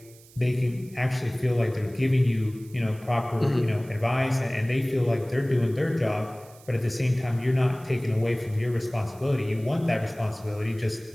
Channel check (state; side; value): noise; right; hiss, 24 dB below the sound